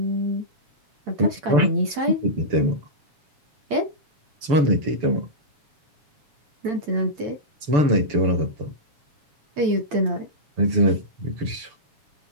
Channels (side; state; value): left; late; 6.8 ms